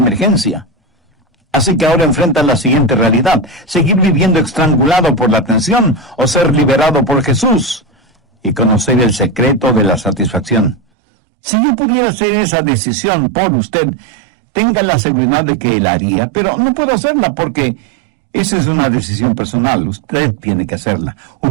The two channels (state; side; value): drops out; left; at 10.8 s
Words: Así que ahora enfrenta la siguiente realidad: seguir viviendo estrangulado por la tensión o ser liberado por Jesús y conocer el secreto de la satisfacción. Si yo pudiera hacer esa decisión por usted, tenga la seguridad de que Él haría, pero no puedo hacerla porque esa es una decisión personal. Usted tiene que hacerla,